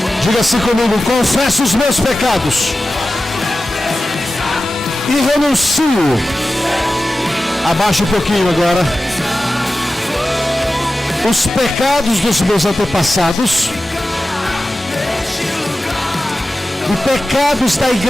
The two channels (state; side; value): normal; both; correlation 0.94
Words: Diga assim comigo: confesso os meus pecados, e renuncio. Abaixa um pouquinho agora. Os pecados dos meus antepassados e pecados da